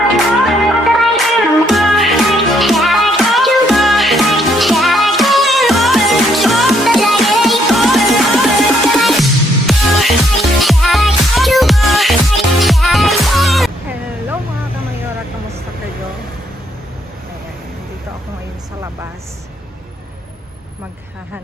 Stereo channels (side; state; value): both; normal; correlation 0.71